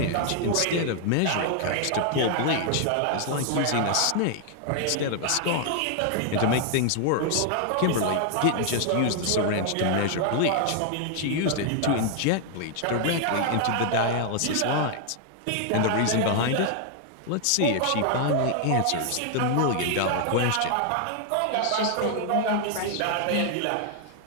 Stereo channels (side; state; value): both; different; correlation 0.00